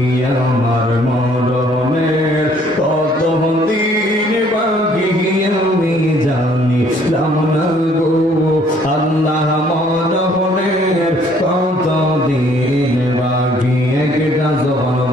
আমার মরণের কত দিন বাকি আমি জানিলাম না গো, আল্লাহ মরণের কত দিন বাকি। একটা জবান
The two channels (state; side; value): normal; both; correlation 0.61